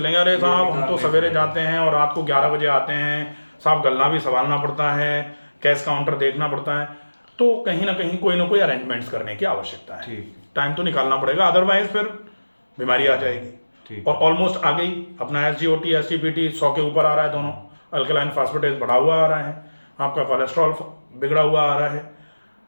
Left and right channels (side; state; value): both; inverted; correlation -1.00